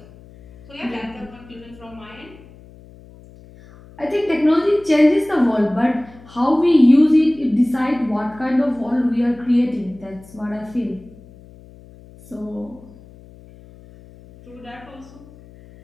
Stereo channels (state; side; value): noise; left; hum, 22 dB below the sound